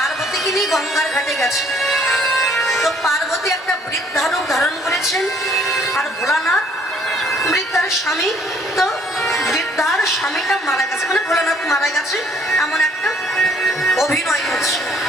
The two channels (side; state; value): both; normal; correlation 0.61